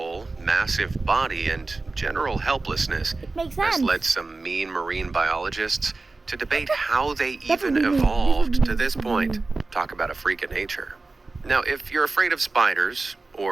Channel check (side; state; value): left; quieter; 3.5 dB